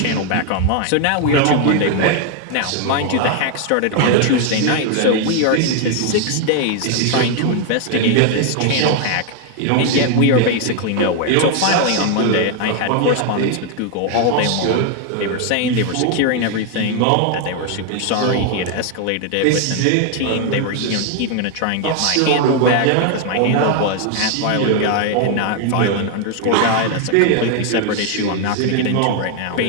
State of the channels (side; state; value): both; different; correlation 0.01